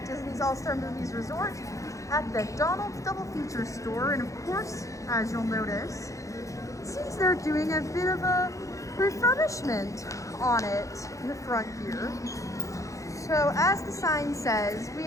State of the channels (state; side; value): late; right; 0.15 ms